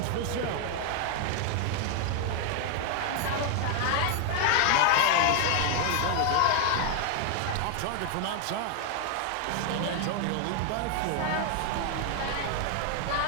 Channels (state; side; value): different; both; correlation 0.00